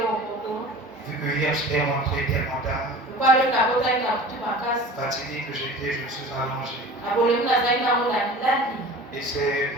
Vu que hier j'étais rentré tellement tard, fatigué que j'étais, je me suis allongé. Et c'est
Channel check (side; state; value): both; normal; correlation 0.39